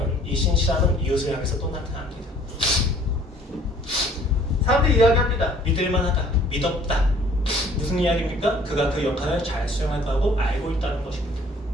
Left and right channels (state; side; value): normal; both; correlation 0.56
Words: 이 신실함은 이웃을 향해서 또 나타납니다. 사람들이 이야기합니다. 믿을만하다, 믿었다. 무슨 이야기입니까? 그가 그 역할을 잘 수행할 거라고 알고 있다는 것입니다.